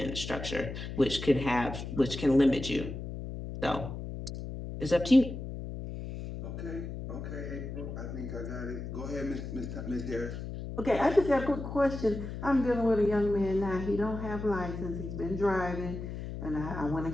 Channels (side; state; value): left; noise; hum, 7 dB below the sound